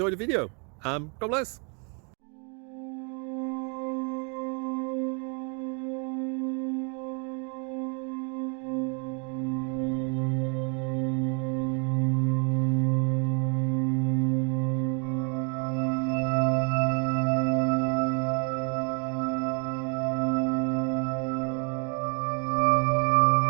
the video. God bless.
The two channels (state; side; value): quieter; left; 36.4 dB